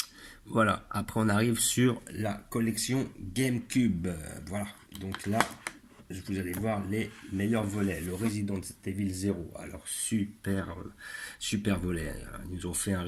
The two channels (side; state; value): both; identical; correlation 1.00